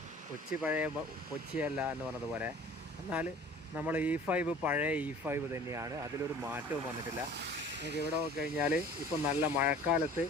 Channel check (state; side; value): normal; both; correlation 0.47